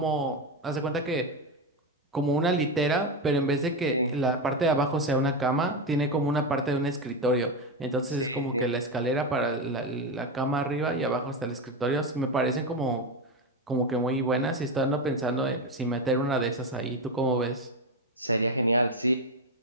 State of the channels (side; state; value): both; normal; correlation 0.13